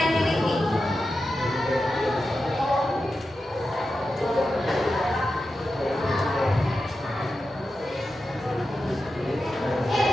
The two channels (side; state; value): both; normal; correlation 0.91